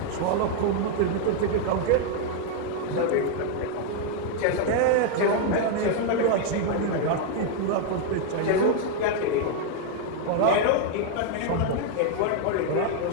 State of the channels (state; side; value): different; both; correlation 0.00